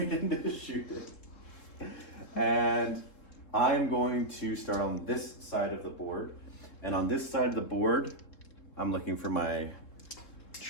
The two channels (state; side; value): late; right; 3.7 ms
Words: into shooting. And I'm going to start on this side of the board. And on this side of the board, I'm looking for my